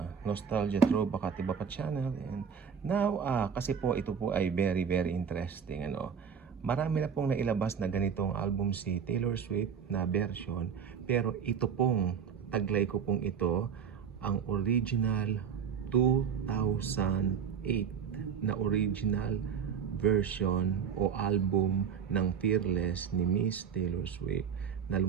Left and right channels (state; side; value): quieter; left; 7.2 dB